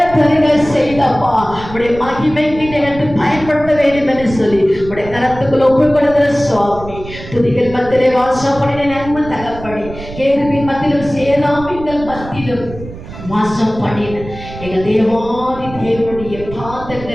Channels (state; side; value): noise; right; rumble, 13 dB below the sound